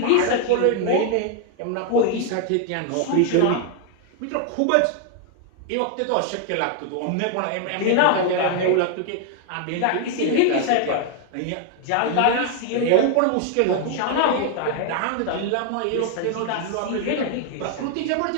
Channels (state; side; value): different; both; correlation 0.00